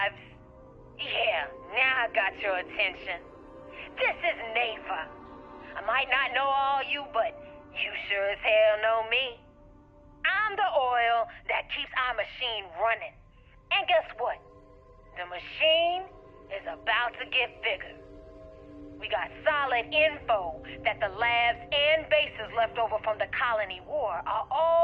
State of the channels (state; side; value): identical; both; correlation 1.00